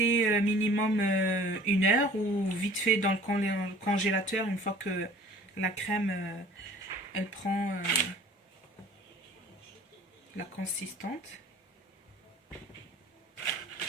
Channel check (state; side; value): normal; both; correlation 0.49